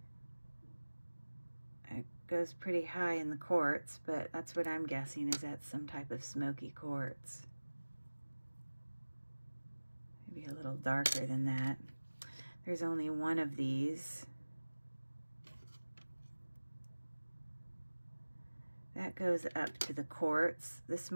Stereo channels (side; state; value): both; inverted; correlation -1.00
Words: It goes pretty high in the quartz, but that's what I'm guessing, is that some type of smoky quartz. Maybe a little darker than that. There's only one of these. That goes up to the quartz. This